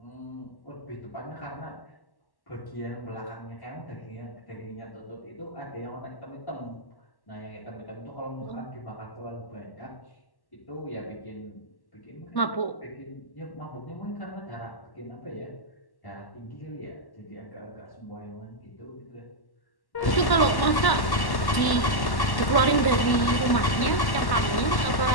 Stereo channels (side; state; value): right; late; 1.1 ms